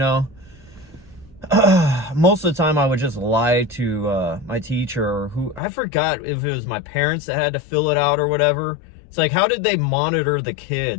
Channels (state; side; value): drops out; right; at 5.6 s